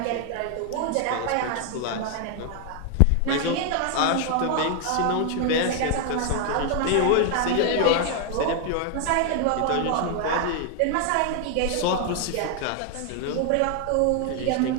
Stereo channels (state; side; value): different; both; correlation 0.00